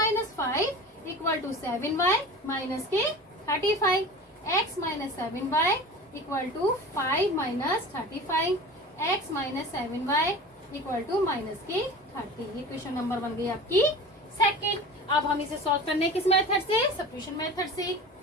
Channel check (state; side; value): normal; both; correlation 0.35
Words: 5 equal to 7y minus के 35, x minus 7y equal to 5 minus 35, x minus 7y equal to minus के 30। ये क्वेश्चन नंबर बन गई आपकी सेकेंड। अब हम इसे सॉल्व करने किस मेथड से? सब्स्टिट्यूशन मेथड से,